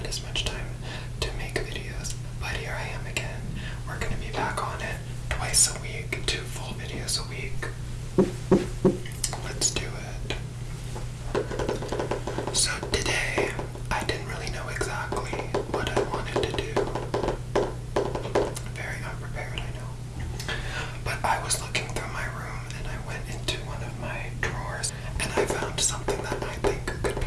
had as much time to make videos, but here I am again. We're going to be back on it twice a week, 2 full videos a week. Let's do it. So today, I didn't really know exactly what I wanted to do. Very unprepared, I know. But I was looking through my room and I went into one of my drawers and I found something that I think could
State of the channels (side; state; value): both; identical; correlation 1.00